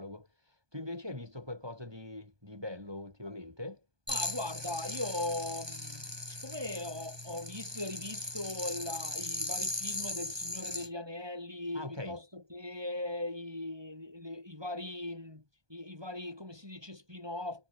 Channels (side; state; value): left; late; 1.2 ms